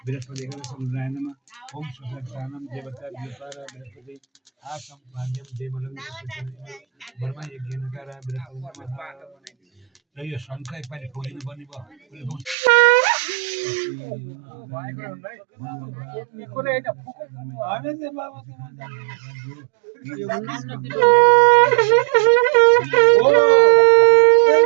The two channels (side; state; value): left; drops out; at 12.6 s